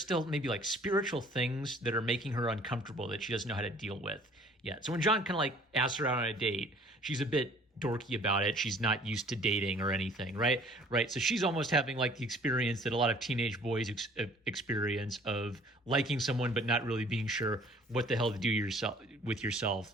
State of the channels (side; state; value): both; normal; correlation 0.54